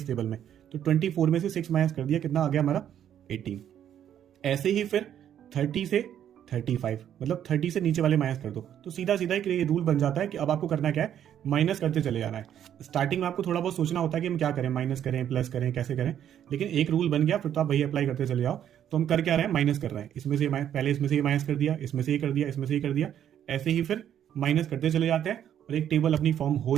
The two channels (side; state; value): left; quieter; 10.0 dB